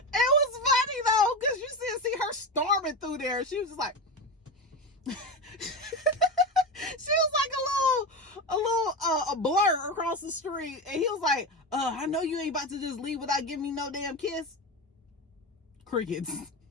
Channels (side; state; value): both; normal; correlation 0.20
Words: funny though, because you see her storming through there. She was just like, she was like a blur across the street, and he was like, I know you ain't about to just leave without giving me no damn kiss. Crickets.